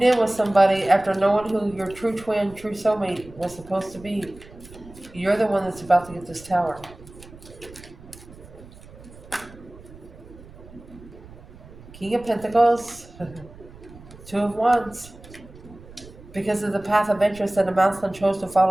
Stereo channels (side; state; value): right; noise; rumble, 19 dB below the sound